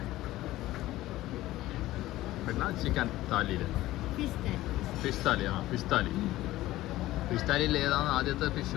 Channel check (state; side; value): quieter; right; 16.2 dB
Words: പിന്നെ ചിക്കൻ താലിയിൽ ഫിഷ് താലിയിൽ ഏതാണ് ആദ്യത്തെ